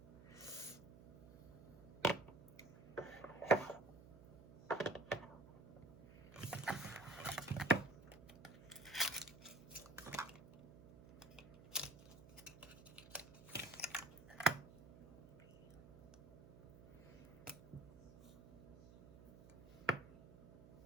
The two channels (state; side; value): noise; right; hum, 17 dB below the sound